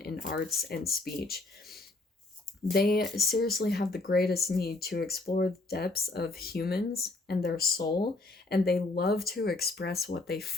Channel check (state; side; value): quieter; right; 3.1 dB